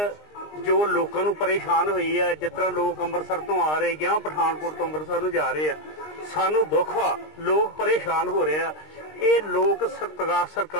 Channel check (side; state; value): right; late; 20 ms